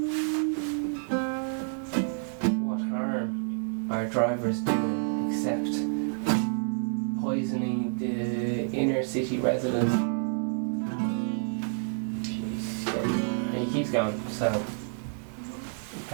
What harm are drivers doing except poisoning the inner city residents? Jeez, yeah. He keeps going, so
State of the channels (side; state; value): left; silent; 59 dB below the other